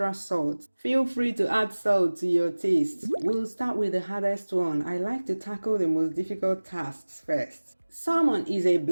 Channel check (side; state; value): both; inverted; correlation -1.00